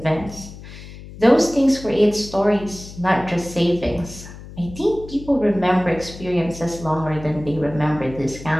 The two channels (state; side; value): noise; left; hum, 15 dB below the sound